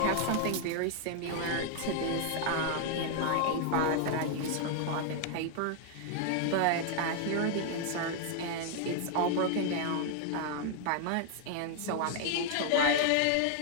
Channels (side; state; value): both; different; correlation 0.00